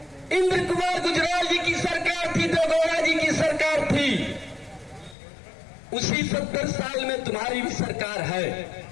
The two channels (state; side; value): drops out; right; at 5.2 s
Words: इंद्र कुमार गुजराल जी की सरकार थी, देवेगौड़ा जी की सरकार थी, उसी 70 साल में तुम्हारी भी सरकार है।